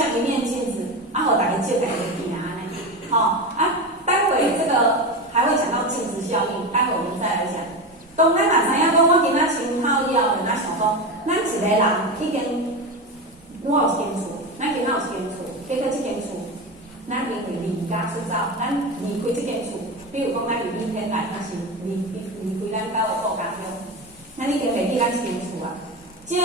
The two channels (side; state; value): both; normal; correlation 0.21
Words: 一面镜子，啊，互大家照家己镜安尼，好啊，待会这个。还会讲到镜子效应，待会我们再来讲。当咱若知影讲，我今仔先靠了，咱想讲，咱一个人已经，我有一间厝，咱今仔有一间厝，结果这间厝，咱因为离家出走，咱离开这间厝，比如讲咱离天来，还是离开咱家的故乡乡，咱已经袂记咱这间厝啊。照